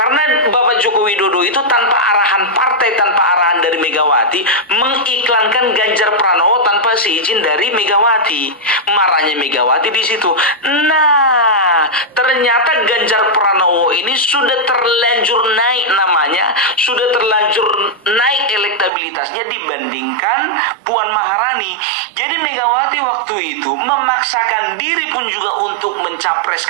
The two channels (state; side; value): drops out; left; at 18.9 s